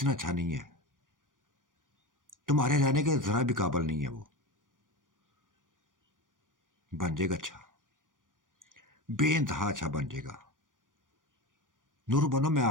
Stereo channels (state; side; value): late; left; 0.88 ms